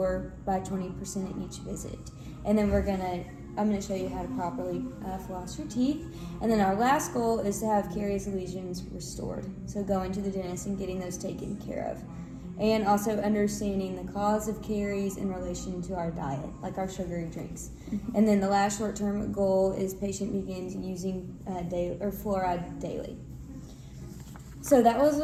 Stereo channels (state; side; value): identical; both; correlation 1.00